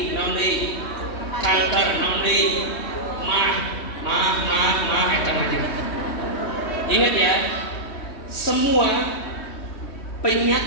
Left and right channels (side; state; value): right; late; 3.2 ms